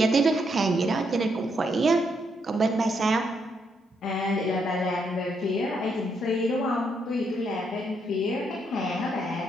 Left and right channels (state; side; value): normal; both; correlation 0.77